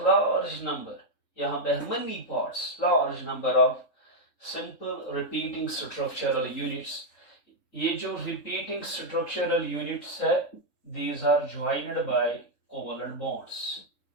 number. यहाँ पे many parts, large number of simple repeating structural units. ये जो repeating structural units है, these are joined by covalent bonds.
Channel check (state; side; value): late; right; 3.6 ms